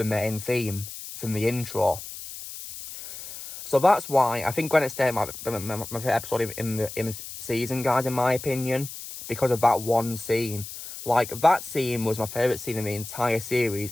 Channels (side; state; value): left; noise; hiss, 11 dB below the sound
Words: main theme from the intro. So that's why I think Granite State might be my favourite episode in the season, guys, in my opinion, because of that one scene. Like, that scene was my favourite scene in the entire series,